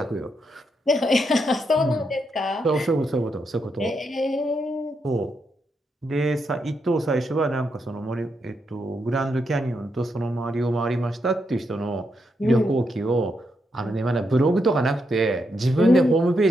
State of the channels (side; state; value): both; normal; correlation 0.81